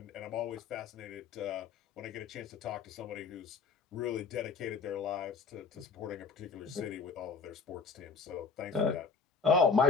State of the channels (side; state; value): right; quieter; 5.1 dB